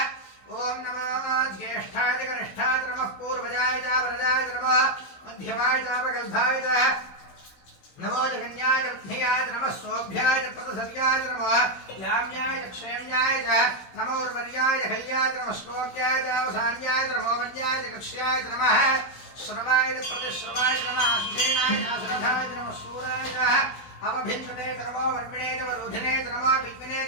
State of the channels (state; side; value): late; right; 16 ms